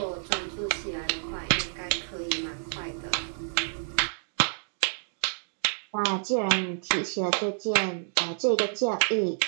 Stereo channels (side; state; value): left; silent; digital silence